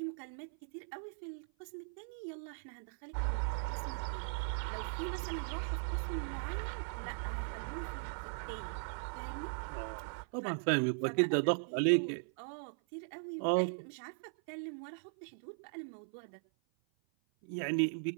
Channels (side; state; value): left; silent; 52 dB below the other